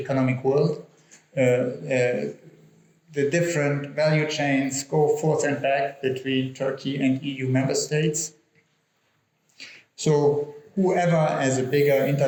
world. The different value chains go forth and back between Turkey and EU member states. So whoever, as a bigger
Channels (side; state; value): both; identical; correlation 1.00